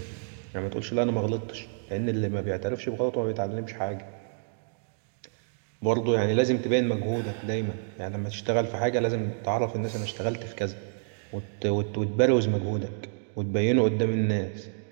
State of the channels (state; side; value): silent; left; digital silence